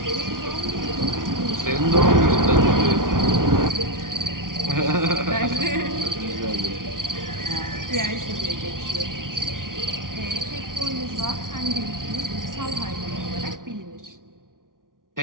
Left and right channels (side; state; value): left; late; 0.89 ms